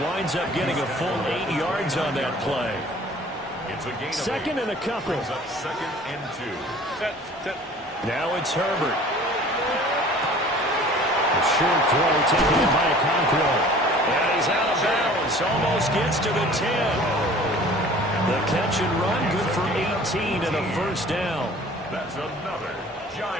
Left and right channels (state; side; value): normal; both; correlation 0.48